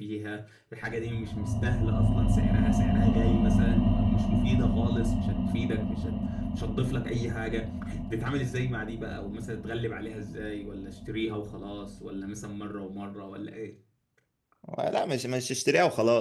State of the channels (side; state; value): both; identical; correlation 1.00